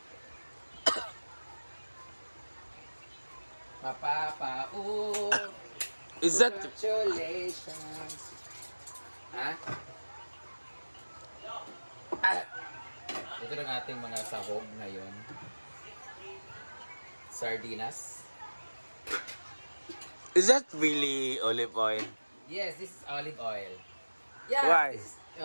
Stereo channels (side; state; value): both; inverted; correlation -1.00